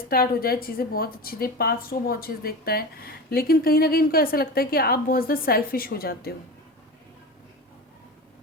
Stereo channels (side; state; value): both; normal; correlation 0.28